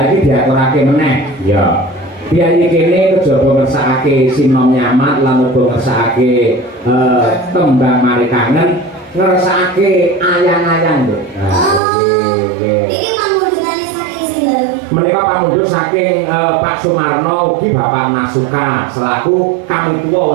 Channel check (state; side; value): drops out; left; at 11.8 s